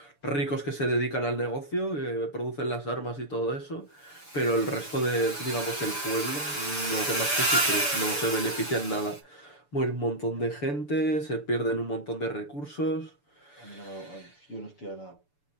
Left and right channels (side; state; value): right; late; 6.9 ms